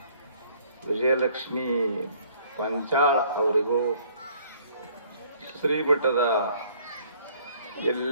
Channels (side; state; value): both; inverted; correlation -0.59